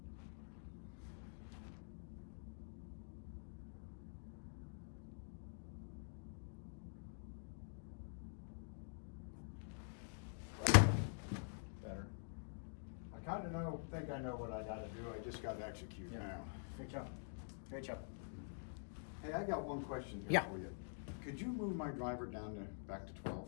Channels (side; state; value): right; silent; digital silence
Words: Better. I kind of think I know what I gotta do, I just gotta execute now. Great job. Great job. Hey, I got one question here Yeah. for you. Could you move my driver down to, back to